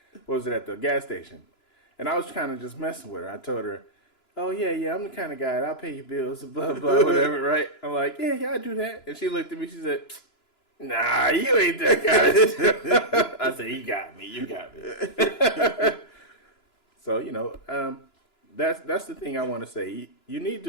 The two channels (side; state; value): right; late; 2.9 ms